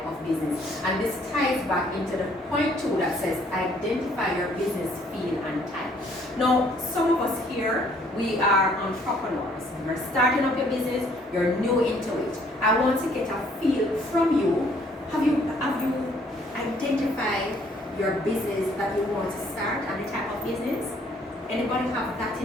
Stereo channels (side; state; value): both; normal; correlation 0.63